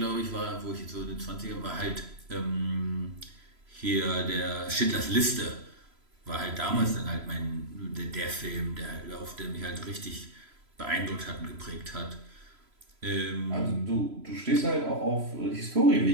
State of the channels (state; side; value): late; left; 3.0 ms